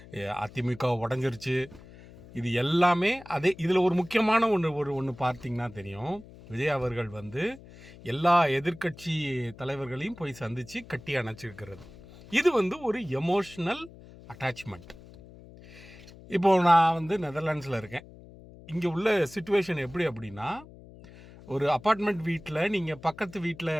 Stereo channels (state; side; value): noise; left; hum, 20 dB below the sound